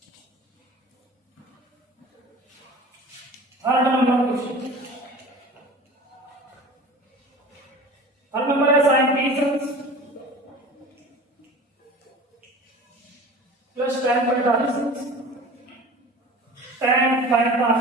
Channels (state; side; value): normal; both; correlation 0.39